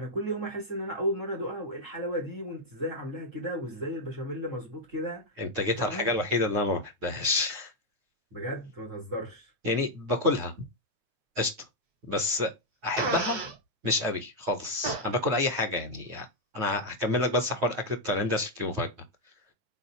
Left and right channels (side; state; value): left; late; 9.3 ms